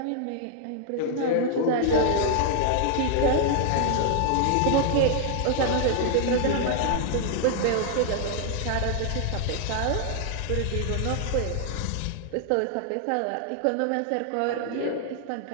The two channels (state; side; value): different; both; correlation 0.00